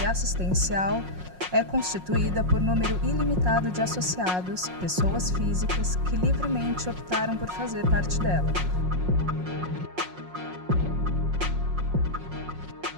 assistencial, é constituída por número ilimitado de associados, pessoas físicas que livremente optaram por fazer parte dela.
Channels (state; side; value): late; left; 5.5 ms